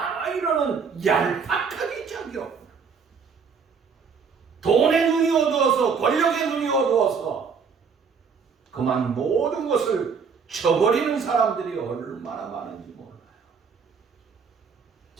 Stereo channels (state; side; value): quieter; left; 5.8 dB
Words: 이러는 얄팍하게 자기요. 돈의 눈이 어두워서 권력의 눈이 어두워서 그만 모든 것을 쳐버리는 사람들이 얼마나 많은지 몰라요.